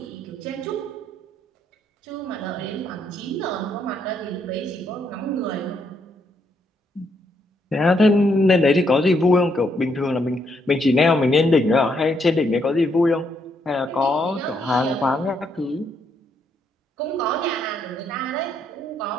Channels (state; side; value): normal; both; correlation 0.75